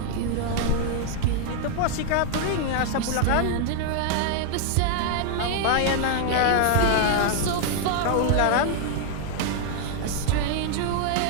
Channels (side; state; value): both; different; correlation 0.00